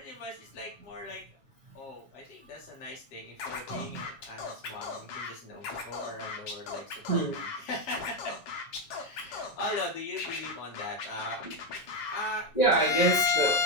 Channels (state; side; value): late; right; 7.3 ms